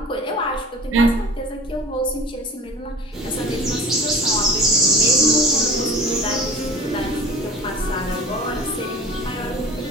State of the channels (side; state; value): both; normal; correlation 0.41